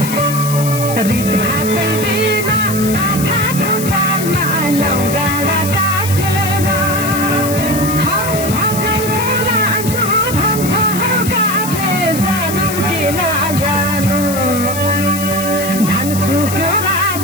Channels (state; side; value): noise; left; hiss, 7 dB below the sound